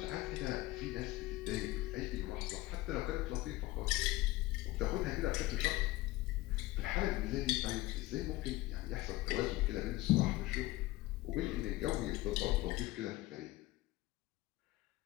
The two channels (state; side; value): quieter; right; 18.2 dB